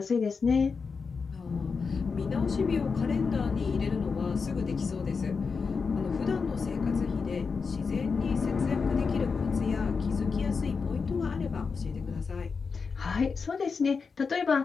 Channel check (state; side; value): quieter; right; 5.1 dB